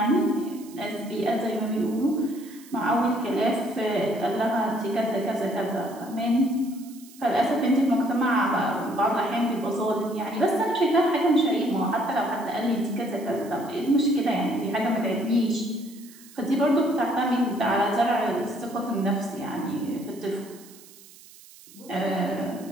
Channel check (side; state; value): right; noise; hiss, 22 dB below the sound